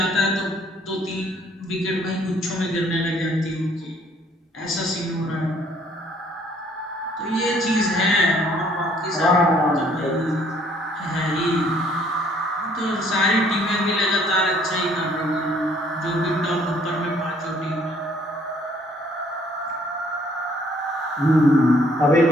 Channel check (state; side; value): normal; both; correlation 0.62